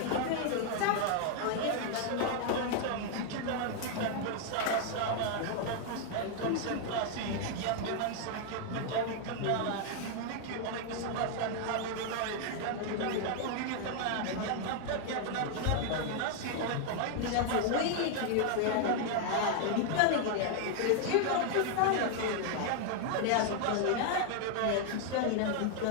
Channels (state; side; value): different; both; correlation 0.00